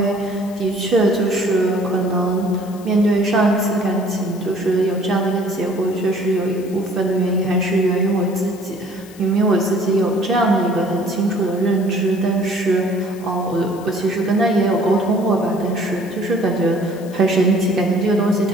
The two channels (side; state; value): left; noise; hiss, 22 dB below the sound